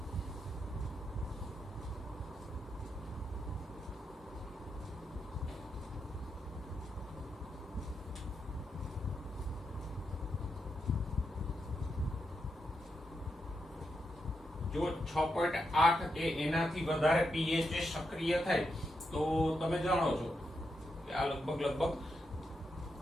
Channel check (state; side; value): normal; both; correlation 0.84